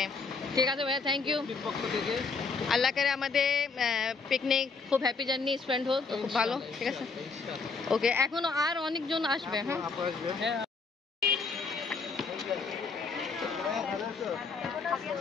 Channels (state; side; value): quieter; right; 4.6 dB